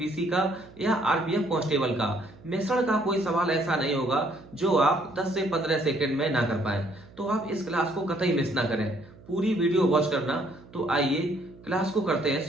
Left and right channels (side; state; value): right; noise; hum, 22 dB below the sound